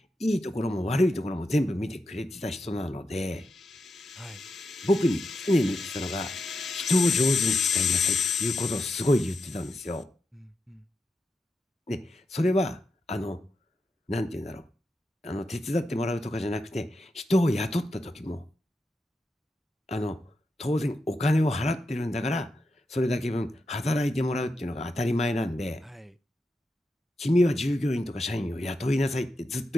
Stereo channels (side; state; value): both; normal; correlation 0.86